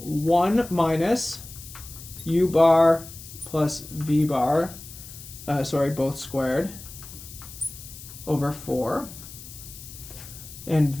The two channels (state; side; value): noise; left; hiss, 15 dB below the sound